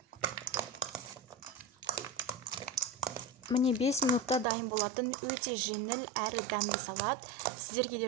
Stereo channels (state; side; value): drops out; left; at 4.5 s